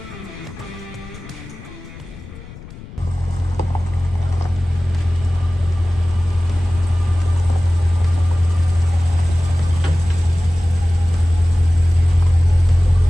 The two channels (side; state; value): left; noise; rumble, 17 dB below the sound